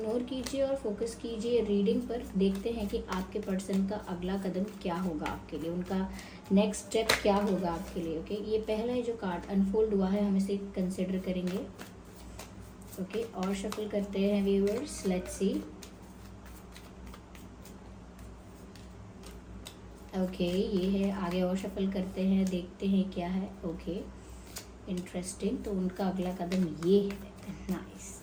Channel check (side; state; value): both; identical; correlation 1.00